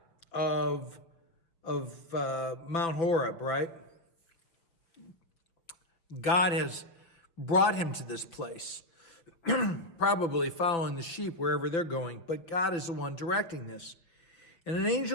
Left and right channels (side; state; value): right; late; 6.0 ms